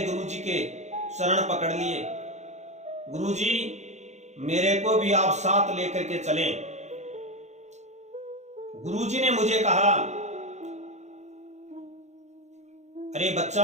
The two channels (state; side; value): late; left; 0.33 ms